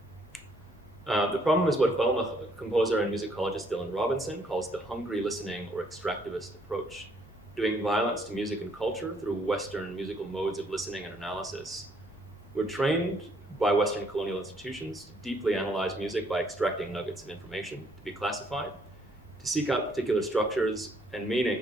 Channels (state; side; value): normal; both; correlation 0.67